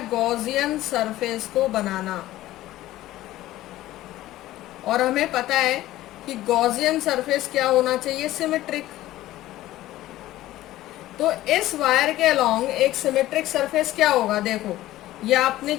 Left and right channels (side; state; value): right; quieter; 15.4 dB